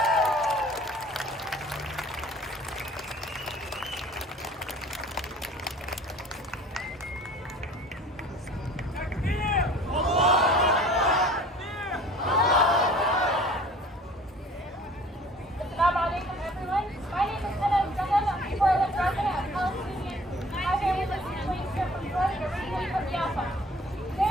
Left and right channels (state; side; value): normal; both; correlation 0.49